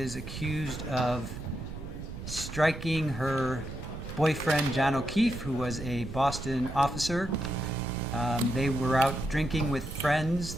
accused of striking her boyfriend, John O'Keefe, who was a Boston officer. They were out drinking with friends,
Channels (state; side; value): noise; right; rumble, 9 dB below the sound